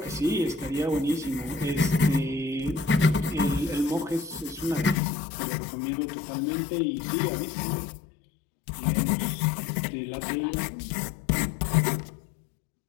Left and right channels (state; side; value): drops out; right; at 5.0 s